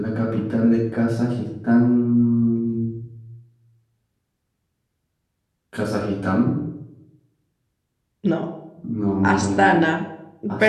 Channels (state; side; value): identical; both; correlation 1.00